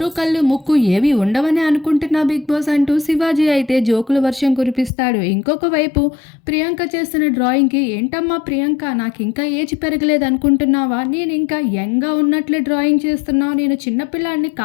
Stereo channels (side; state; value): right; drops out; at 4.9 s